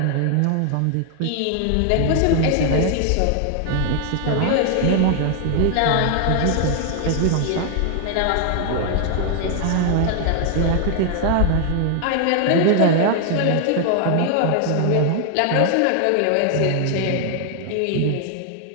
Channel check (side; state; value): both; different; correlation 0.00